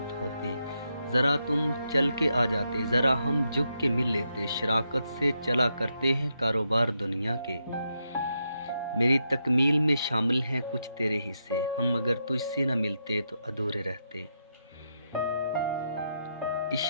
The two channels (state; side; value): inverted; both; correlation -0.82